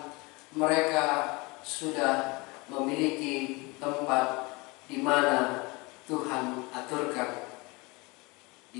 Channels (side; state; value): right; quieter; 25.7 dB